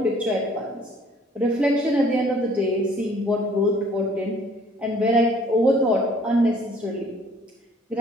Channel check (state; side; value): normal; both; correlation 0.58